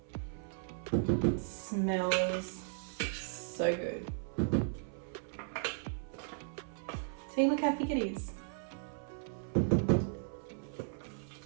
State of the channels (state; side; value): silent; left; 54 dB below the other